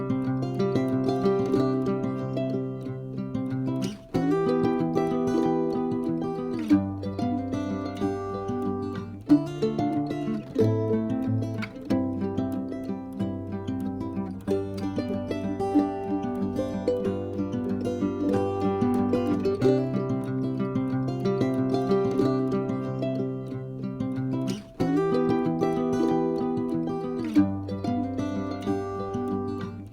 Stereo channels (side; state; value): both; identical; correlation 1.00